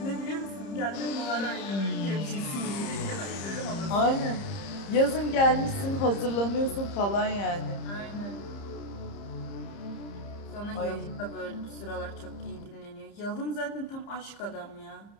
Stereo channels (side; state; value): right; late; 30 ms